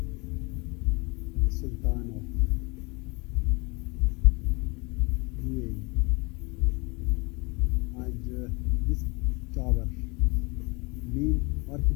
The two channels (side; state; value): right; quieter; 27.9 dB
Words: Sultan of UAE, and this tower, main